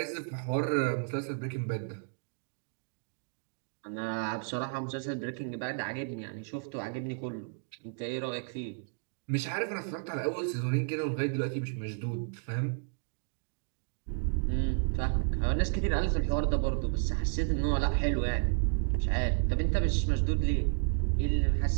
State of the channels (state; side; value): silent; left; digital silence